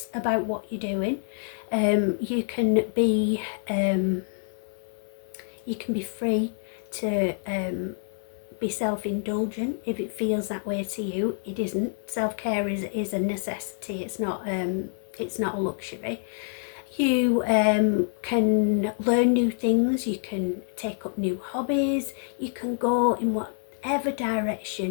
about what you're doing. You can be free to be self-indulgent if it feels that way to you. It isn't. Self-care is a necessity. It's not a luxury. You can learn new things, you can take up new hobbies, you can go in whatever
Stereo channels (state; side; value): silent; right; 60 dB below the other